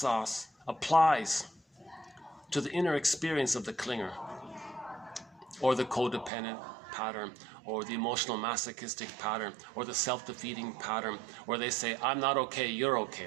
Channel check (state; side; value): drops out; left; at 6.3 s